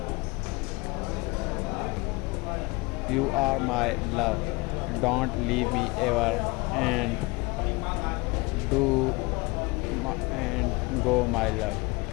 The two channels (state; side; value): quieter; right; 24.9 dB